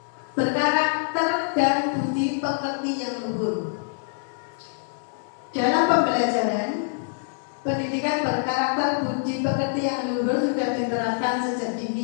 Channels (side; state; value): right; silent; digital silence